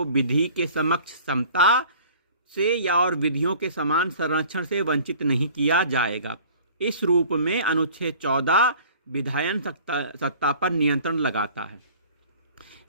विधि के समक्ष समता से या और विधियों के समान संरक्षण से वंचित नहीं किया जाएगा। इस रूप में अनुच्छेद 14 विधायन सत्ता पर नियंत्रण लगाता है।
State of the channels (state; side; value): inverted; both; correlation -0.48